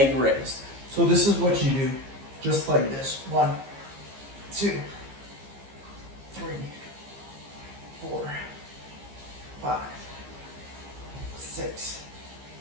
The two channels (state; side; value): late; left; 15 ms